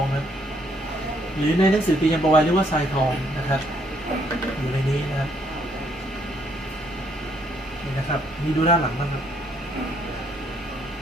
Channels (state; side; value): normal; both; correlation 0.69